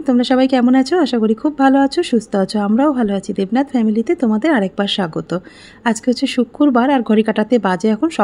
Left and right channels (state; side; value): identical; both; correlation 1.00